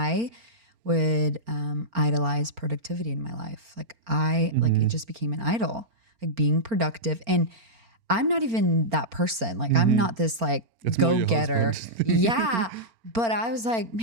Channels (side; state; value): left; late; 4.4 ms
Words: would idolize productivity in my life. Like like it just became an idol, like being productive. And I'm not even that person. Like I'm not this like It's more your go-getter. husband. Yeah. But I was like,